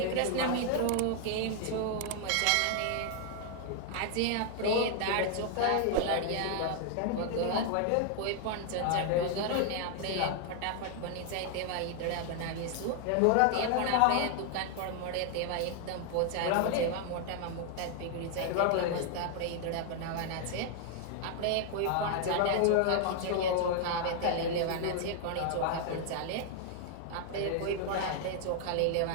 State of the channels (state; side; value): different; both; correlation 0.00